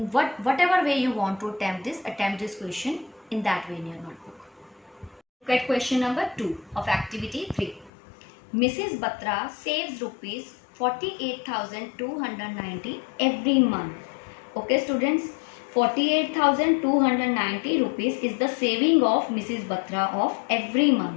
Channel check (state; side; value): drops out; right; at 7.9 s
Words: whatever way you want to attempt this question in that way in your notebook. Look at question number 2 of activity 3. Mrs. Batra saves rupees 48,290 every month. Okay students, 48,290 rupees is the saving of Mrs. Batra of every